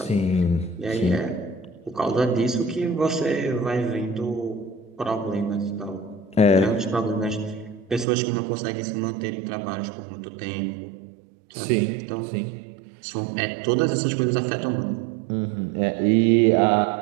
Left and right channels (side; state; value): left; drops out; at 8.1 s